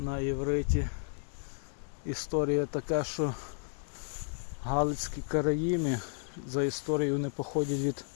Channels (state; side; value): silent; right; 56 dB below the other